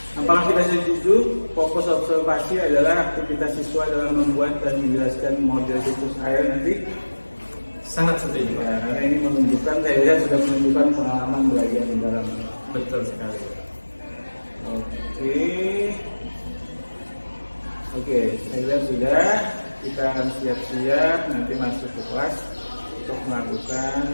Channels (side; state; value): both; inverted; correlation -1.00